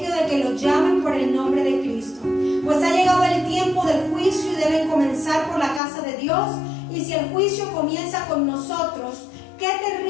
de que los llamen por el nombre de Cristo, pues ha llegado el tiempo del juicio y deben comenzar por la casa de Dios. Y si el juicio comienza con nosotros, qué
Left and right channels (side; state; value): right; drops out; at 5.8 s